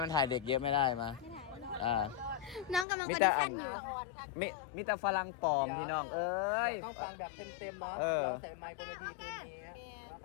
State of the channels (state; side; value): drops out; right; at 2.9 s